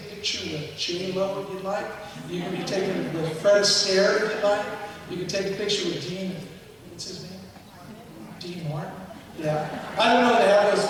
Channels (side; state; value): both; identical; correlation 1.00